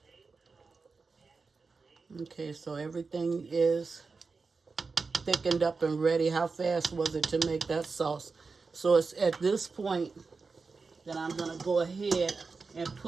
Okay, so everything is thickened up and ready. How fast was it to make that sauce? So it's at this point that I'm going to go ahead and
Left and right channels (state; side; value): quieter; left; 4.4 dB